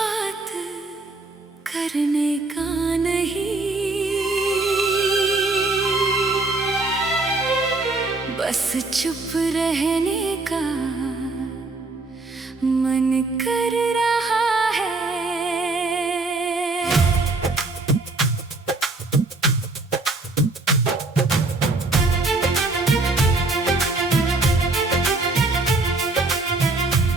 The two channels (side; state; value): left; quieter; 3.3 dB